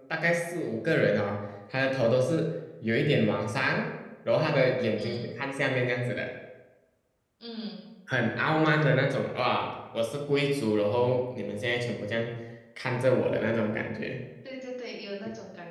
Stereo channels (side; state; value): both; identical; correlation 1.00